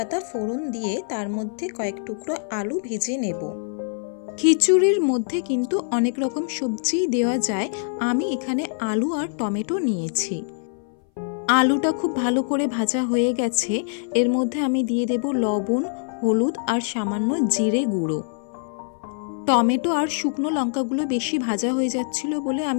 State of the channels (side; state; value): right; silent; 59 dB below the other